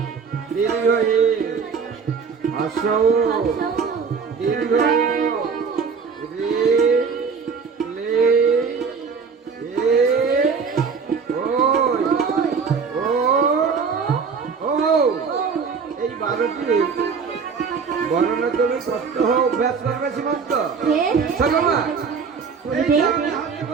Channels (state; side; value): quieter; left; 5.7 dB